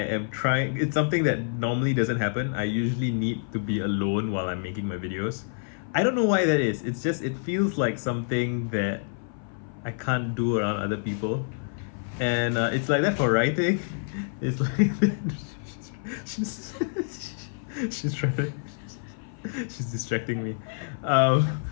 trying. It's something that normally doesn't happen. I usually need to be alone while I'm making my videos. I don't know why that is. It's just it feels like something that I can't do around other people, and it's like that for writing. It's like she's she's trying to she's distracting me, um,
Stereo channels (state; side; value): silent; right; 55 dB below the other